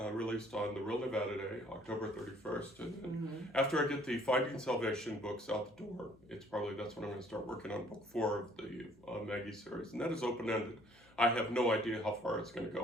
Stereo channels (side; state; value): left; noise; hum, 29 dB below the sound